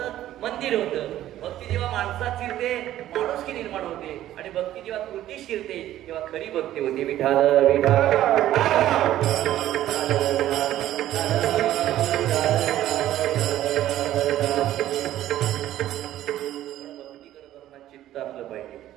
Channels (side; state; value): left; quieter; 13.2 dB